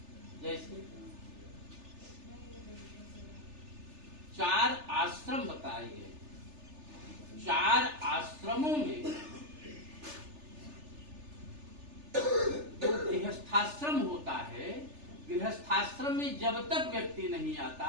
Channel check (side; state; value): left; late; 3.4 ms